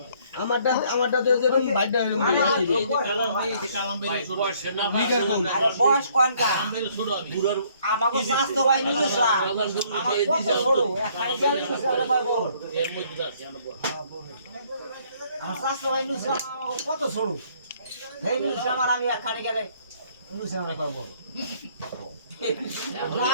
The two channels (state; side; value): inverted; both; correlation -0.63